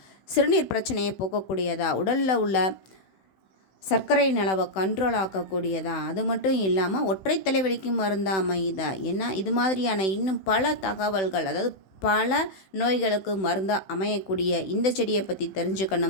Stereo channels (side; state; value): right; late; 16 ms